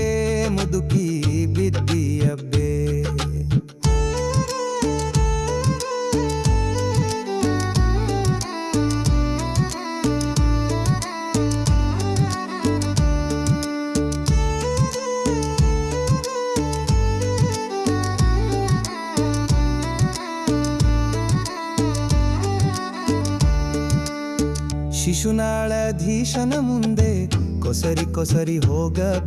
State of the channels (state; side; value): identical; both; correlation 1.00